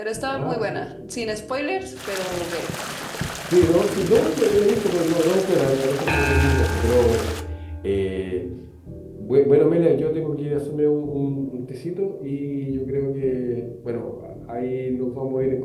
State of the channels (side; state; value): both; identical; correlation 1.00